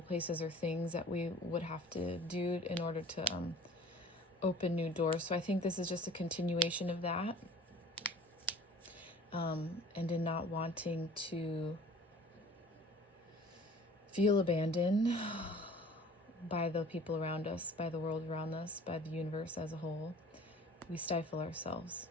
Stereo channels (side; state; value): both; normal; correlation 0.47